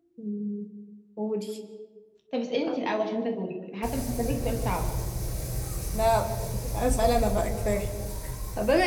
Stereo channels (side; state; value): both; identical; correlation 1.00